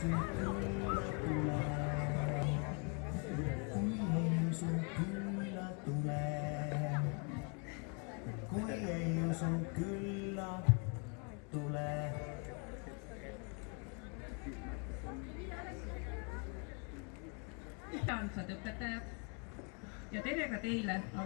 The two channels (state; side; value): quieter; right; 36.9 dB